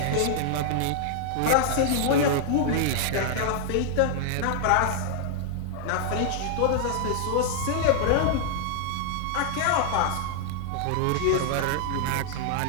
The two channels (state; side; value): different; both; correlation 0.00